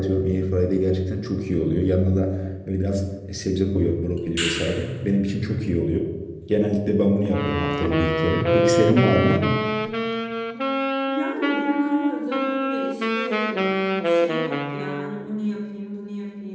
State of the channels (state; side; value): identical; both; correlation 1.00